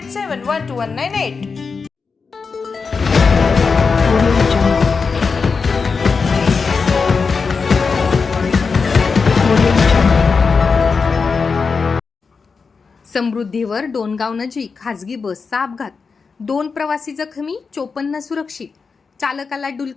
समृद्धीवर डोणगाव नजीक खासगी बसचा अपघात. 2 प्रवासी जखमी, 54 सुरक्षित. चालकाला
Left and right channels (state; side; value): quieter; right; 5.0 dB